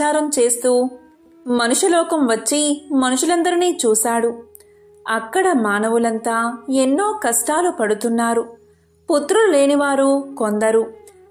చేస్తూ మనుషులోకం వచ్చి మనుషులందరినీ చూశాడు. అక్కడ మానవులంతా ఎన్నో కష్టాలు పడుతున్నారు. పుత్రులు లేనివారు కొందరు,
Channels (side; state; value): both; identical; correlation 1.00